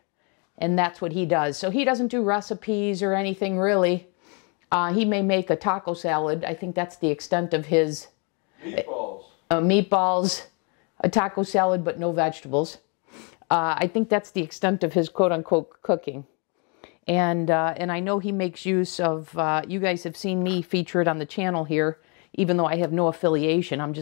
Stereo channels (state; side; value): quieter; right; 35.0 dB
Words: and that's what he does. So he doesn't do recipes or anything really. He may make a taco salad. I think that's the extent of his meatballs, a taco salad, but no vegetables. I think that's the extent of his quote-unquote cooking. And I know he makes use of, you guys have seen me feature it on the channel here, even though I have no affiliation. I'm